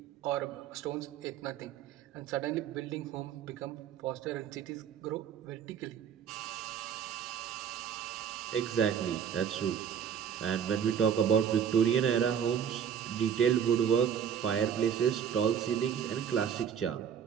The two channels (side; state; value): left; quieter; 8.2 dB